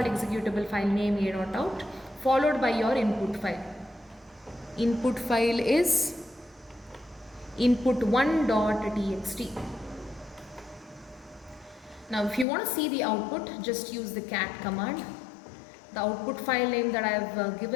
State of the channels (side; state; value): right; drops out; at 12.5 s